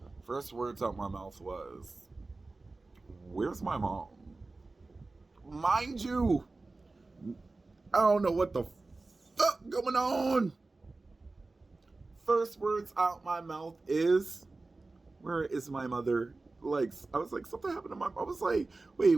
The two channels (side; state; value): left; quieter; 3.4 dB